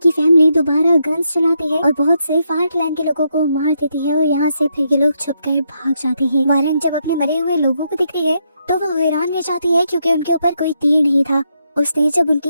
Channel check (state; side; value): inverted; both; correlation -0.79